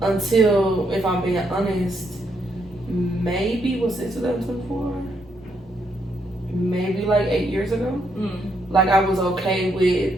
until, if I'm being honest, maybe was it 2024? Maybe like 8 years ago. Like I was okay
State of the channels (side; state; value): both; normal; correlation 0.76